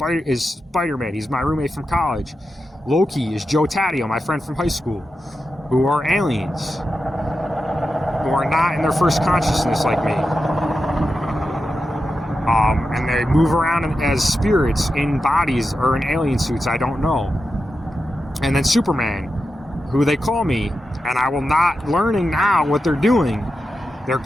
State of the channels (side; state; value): both; normal; correlation 0.90